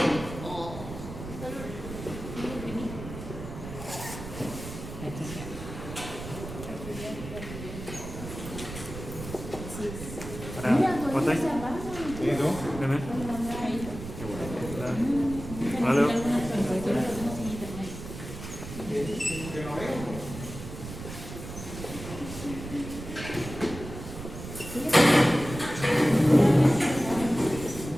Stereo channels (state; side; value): noise; right; rumble, 10 dB below the sound